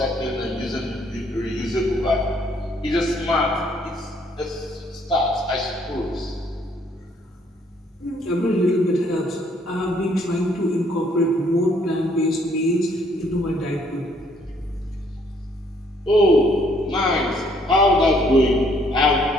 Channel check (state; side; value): normal; both; correlation 0.66